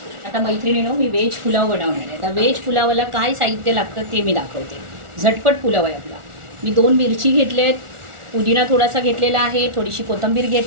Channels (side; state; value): left; late; 1.4 ms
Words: आता मैत्रिणीनो, मी व्हेज पुलाव बनवणार आहे. आता व्हेज पुलावाला काय साहित्य लागतं ते मी दाखवते. झटपट पुलाव आहे आपला. मी 2 मिरची घेतल्यात, पुदिना थोडासा घेतलेला आहे, थोडीशी कोथिंबीर